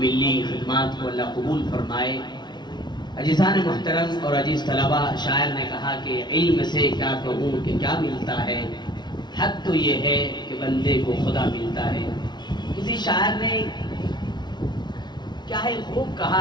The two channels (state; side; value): late; right; 0.21 ms